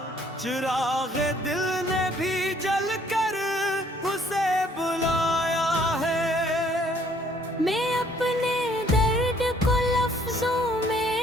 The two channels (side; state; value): both; normal; correlation 0.62